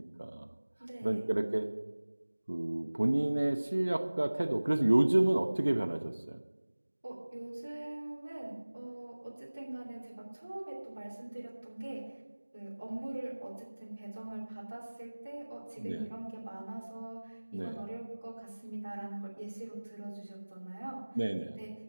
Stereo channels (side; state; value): both; inverted; correlation -1.00